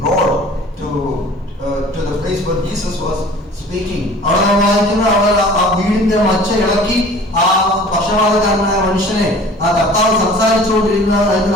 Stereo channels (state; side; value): normal; both; correlation 0.46